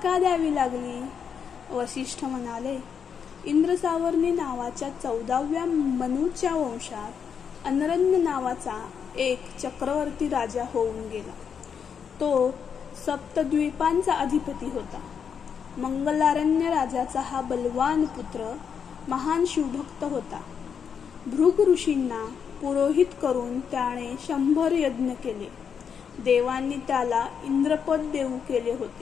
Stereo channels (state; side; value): quieter; right; 7.1 dB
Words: द्यावी लागली? वसिष्ठ म्हणाले, इंद्रसावर्णी नावाच्या 14व्या मनूच्या वंशात अनरण्य नावाचा एक चक्रवर्ती राजा होऊन गेला. तो सप्तद्वीपांचा अधिपती होता. मंगलारण्य राजाचा हा बलवान पुत्र महान शिवभक्त होता. भृग ऋषींना पुरोहित करून त्याने 100 यज्ञ केले. देवांनी त्याला इंद्रपद देऊ केले